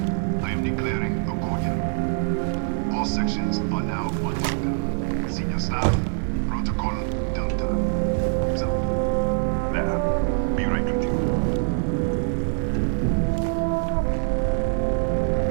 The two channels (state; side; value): silent; left; digital silence